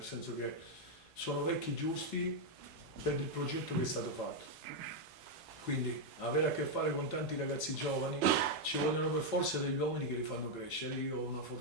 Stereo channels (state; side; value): normal; both; correlation 0.01